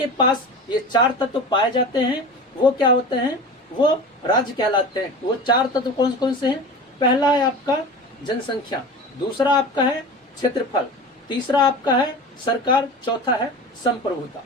पास ये 4 तत्व पाए जाते हैं वो क्या होते हैं? वो राज्य कहलाते हैं। वो 4 तत्व कौन कौन से हैं? पहला है आपका जनसंख्या, दूसरा आपका है क्षेत्रफल, तीसरा आपका है सरकार, चौथा है संप्रभुता।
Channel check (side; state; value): both; normal; correlation 0.33